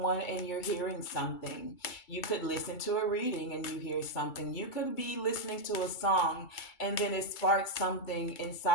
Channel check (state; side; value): late; right; 2.3 ms